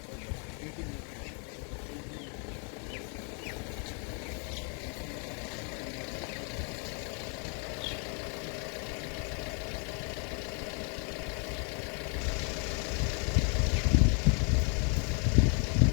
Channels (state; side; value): quieter; right; 38.3 dB